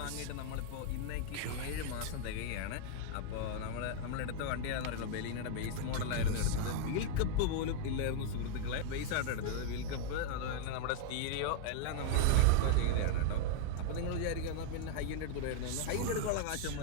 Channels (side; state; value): both; different; correlation 0.00